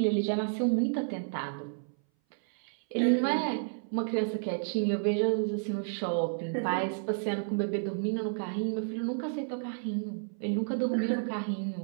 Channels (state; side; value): silent; left; 57 dB below the other